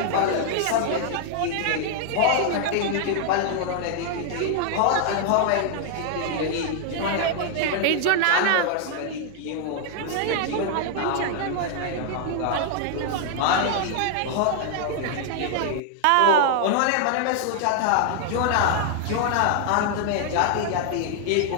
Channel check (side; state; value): both; different; correlation 0.00